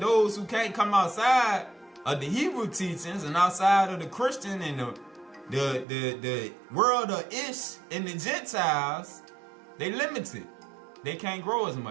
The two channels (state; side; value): drops out; left; at 5.9 s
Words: who can't come outside of the Hebrew teachings and outside of the Christian and the world of Ish and the Gentiles, they limited. They can't grow as